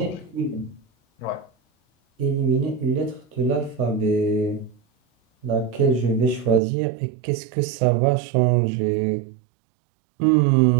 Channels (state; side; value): drops out; left; at 6.6 s